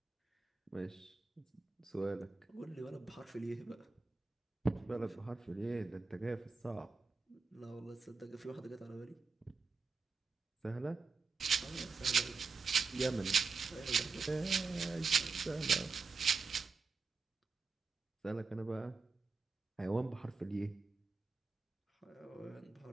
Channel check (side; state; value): left; quieter; 4.4 dB